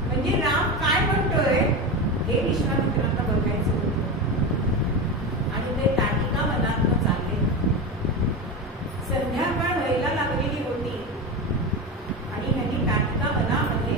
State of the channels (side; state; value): both; normal; correlation 0.21